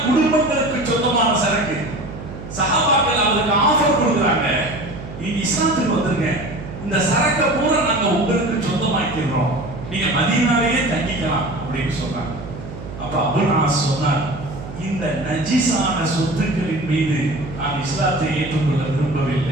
குடும்பங்களுக்கு சொந்தமான சரக்கு. சஹாபாக்கள் அவருக்கு ஆஃபர் கொடுக்குறாங்க, நீங்க இஸ்லாத்துக்கு வந்துருங்க, இந்த சரக்கை பூரா நாங்க உங்களுக்கு சொந்தமாக்கிறோம், நீங்க மதீனாவிலே தங்கிக்கலாம் அப்படின்னு சொன்னாங்க. அப்ப அபுல் சொன்னார், இந்த நஜீஸான சொத்துக்களின் மீது நான் இஸ்லாத்தை ஏற்றுக்கொள்ள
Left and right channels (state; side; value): noise; right; hum, 12 dB below the sound